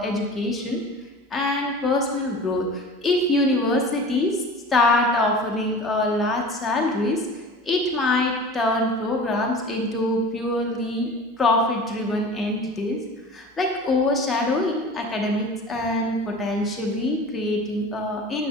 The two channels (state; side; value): normal; both; correlation 0.38